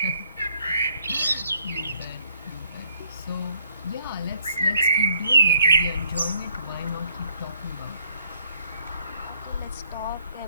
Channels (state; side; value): inverted; both; correlation -0.67